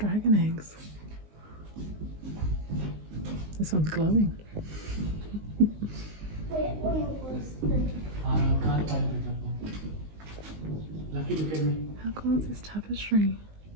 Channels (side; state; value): left; late; 19 ms